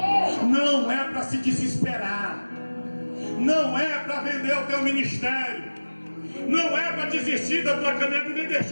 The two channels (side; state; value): both; inverted; correlation -1.00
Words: Não é para se desesperar, não é para vender o teu ministério, não é para desistir da tua caminhada e nem